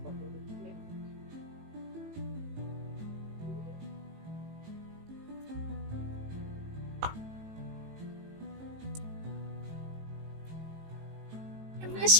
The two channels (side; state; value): left; late; 18 ms